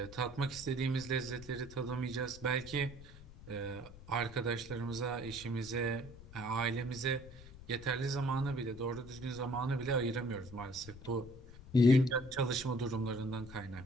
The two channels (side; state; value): left; noise; rumble, 16 dB below the sound